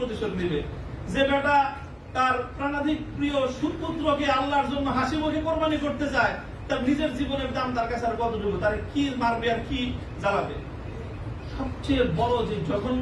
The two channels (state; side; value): identical; both; correlation 1.00